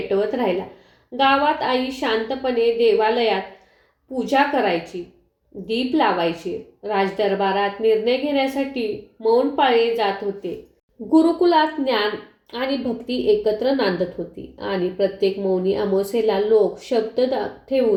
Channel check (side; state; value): both; identical; correlation 1.00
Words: राहिला. गावात आई शांतपणे देवालयात पूजा करायची, दीप लावायची. राजदरबारात निर्णय घेण्यासाठी मौन पाळले जात होते. गुरुकुलात ज्ञान आणि भक्ती एकत्र नांदत होती आणि प्रत्येक मौनी अमावास्येला लोक शब्द